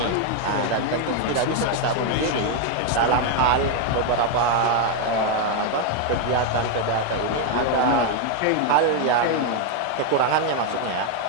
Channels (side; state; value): both; different; correlation 0.01